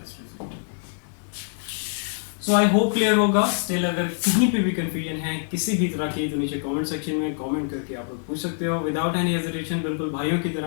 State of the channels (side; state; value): right; silent; digital silence